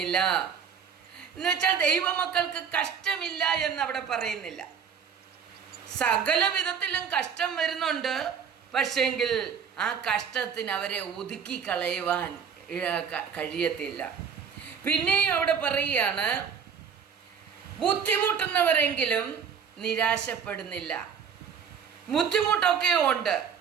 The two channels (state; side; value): quieter; left; 7.0 dB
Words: എന്ന് വെച്ചാൽ ദൈവമക്കൾക്ക് കഷ്ടമില്ല എന്നവിടെ പറയുന്നില്ല. സകല വിധത്തിലും കഷ്ടം വരുന്നുണ്ട്, പക്ഷെങ്കിൽ ആ കഷ്ടത്തിന് അവരെ ഒതുക്കി കളയുവാൻ കഴിയത്തില്ല. പിന്നെയും അവിടെ പറയുകയാണ്, ബുദ്ധിമുട്ടുന്നവരെങ്കിലും നിരാശപ്പെടുന്നില്ല. ബുദ്ധിമുട്ടൊക്കെ ഉണ്ട്,